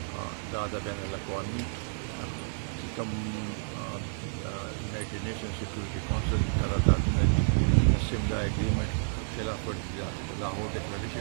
دا د بین الاقوامي چې کوم یونایټډ نیشن سیکورټي کونسل قراردادونه دي سیملا اګریمنټ خلاف ورزي ده لاهور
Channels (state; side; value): silent; left; digital silence